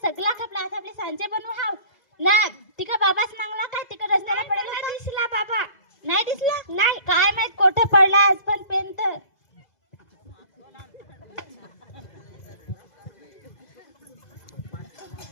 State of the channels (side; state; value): right; late; 2.0 ms